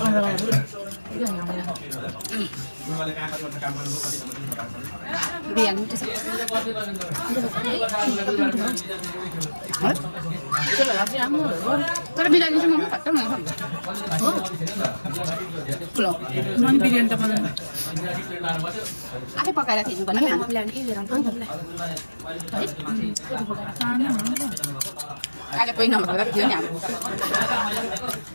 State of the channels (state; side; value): inverted; both; correlation -1.00